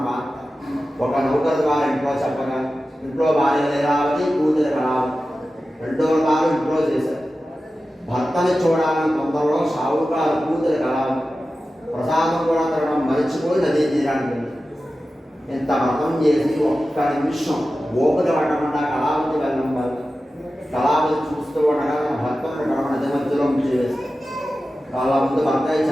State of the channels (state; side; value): normal; both; correlation 0.94